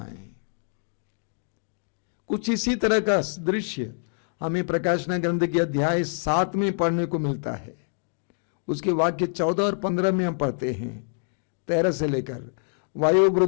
कुछ इसी तरह का दृश्य हमें प्रकाशना ग्रंथ के अध्याय 7 में पढ़ने को मिलता है। उसके वाक्य 14 और 15 में हम पढ़ते हैं, 13 से लेकर।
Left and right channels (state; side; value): silent; right; digital silence